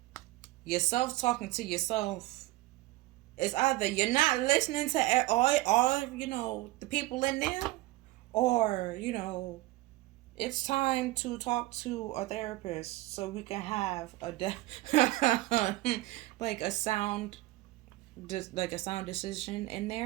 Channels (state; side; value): quieter; left; 18.7 dB